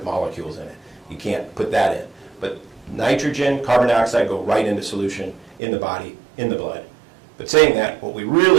molecules in it. You can't put that in. But nitrogen, carbon dioxide go right into solution in the body, in the blood. But saying that, what we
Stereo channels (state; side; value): drops out; left; at 5.6 s